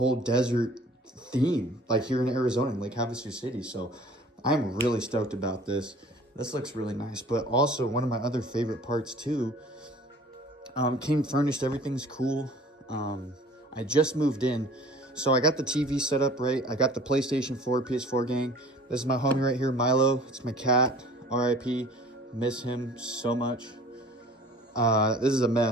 desert theme, like here in Arizona, in Lake Havasu City. So I'm really stoked about this. This looks really nice. But also, one of my other favorite parts too, came furnished. Everything's cool. I just moved in. So I got the TV set up right. I got the PlayStation 4, PS4 gang. This is my homie right here, Milo. It's my cat, RIP. Miss him so much. This is a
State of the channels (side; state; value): both; normal; correlation 0.48